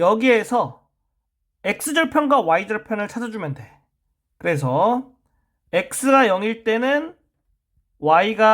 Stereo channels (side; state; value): both; identical; correlation 1.00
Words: x절편과 y절편을 찾아주면 돼. 그래서 x가 0일 때는